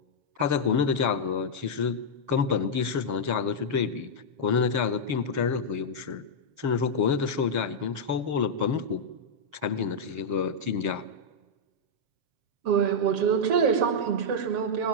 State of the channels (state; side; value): late; left; 7.5 ms